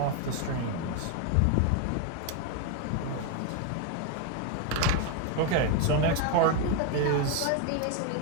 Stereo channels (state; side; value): different; both; correlation 0.01